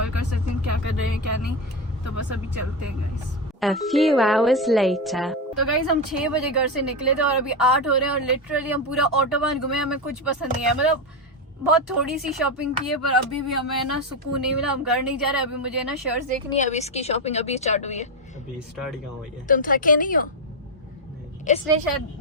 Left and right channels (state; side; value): normal; both; correlation 0.11